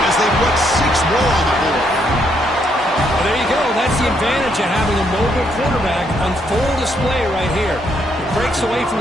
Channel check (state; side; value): normal; both; correlation 0.74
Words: As advantage of having a mobile quarterback on full display right here. He breaks away